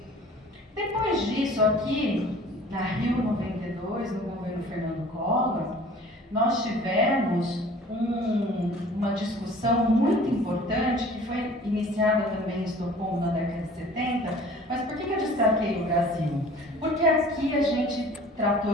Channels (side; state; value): both; normal; correlation 0.48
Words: Depois disso, aqui na Rio 92, no governo Fernando Collor, nós tivemos uma discussão muito importante, que foi iniciada também em Estocolmo na década de 70, mas por que eu destaquei o Brasil? Porque aqui a gente tratou